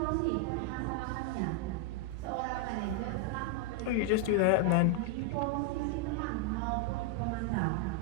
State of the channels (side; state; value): both; different; correlation 0.00